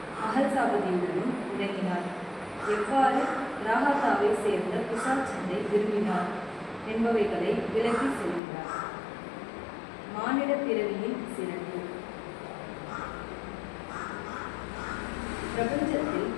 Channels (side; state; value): right; drops out; at 8.4 s